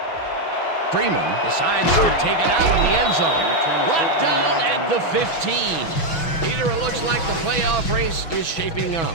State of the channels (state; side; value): late; right; 6.1 ms